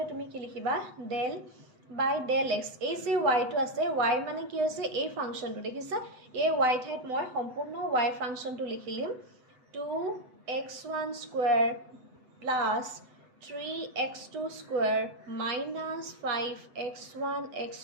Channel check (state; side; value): late; left; 8.0 ms